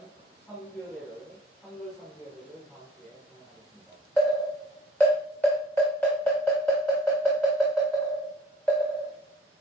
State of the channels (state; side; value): normal; both; correlation 0.51